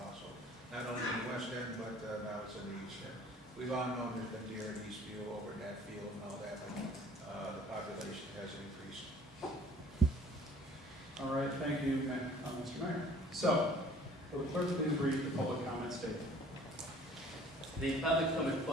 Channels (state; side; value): normal; both; correlation 0.52